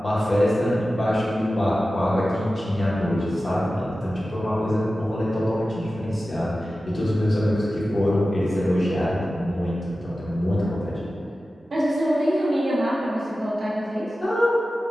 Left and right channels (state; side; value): normal; both; correlation 0.94